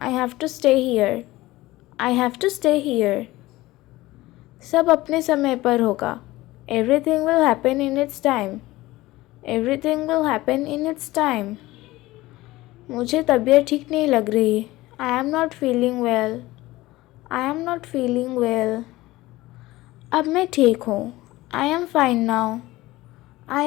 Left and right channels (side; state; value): right; quieter; 18.4 dB